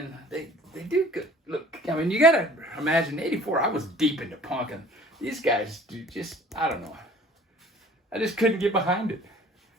they do good. Look, I mean, you gotta imagine, '84, I was deep into punk, and these guys just, I don't know. I just couldn't get behind it.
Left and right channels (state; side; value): normal; both; correlation 0.50